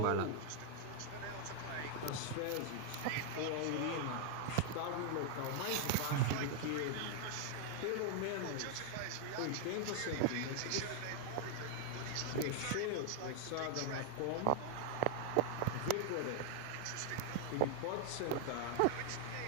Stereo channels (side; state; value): both; different; correlation 0.00